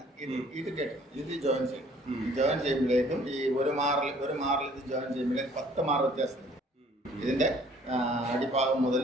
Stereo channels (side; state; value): both; normal; correlation 0.57